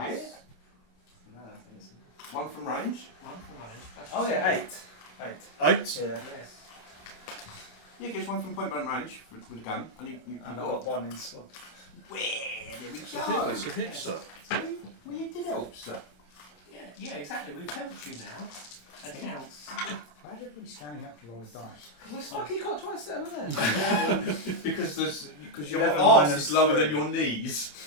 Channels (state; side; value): late; right; 27 ms